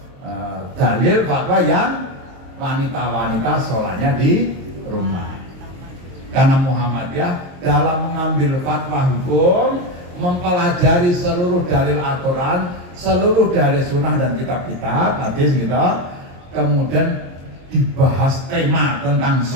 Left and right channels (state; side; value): late; left; 22 ms